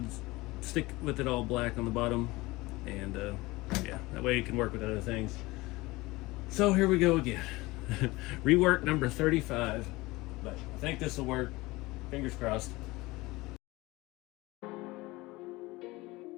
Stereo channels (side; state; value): right; quieter; 21.3 dB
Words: to stick with it all black on the bottom, and yeah, that way it can work with other things. So here we go again. Rework number 35. But I think this will work. Fingers crossed.